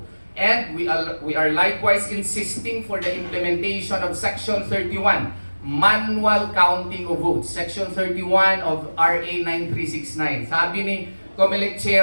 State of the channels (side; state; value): both; inverted; correlation -1.00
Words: And we are likewise insisting for the implementation of Section 31, manual counting of votes. Section 31 of RA 9369. Sabi ni COMELEC